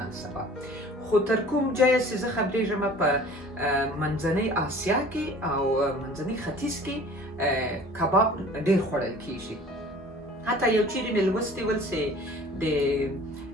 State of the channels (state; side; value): normal; both; correlation 0.47